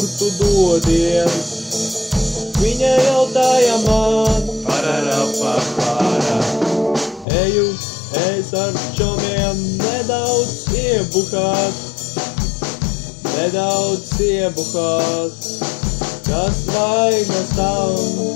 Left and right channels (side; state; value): right; drops out; at 7.2 s